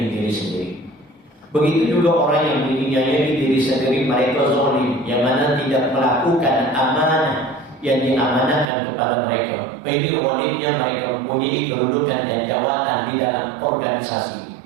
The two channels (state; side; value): drops out; left; at 8.7 s